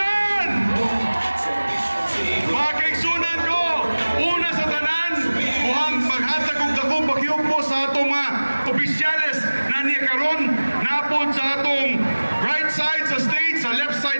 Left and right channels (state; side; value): inverted; both; correlation -1.00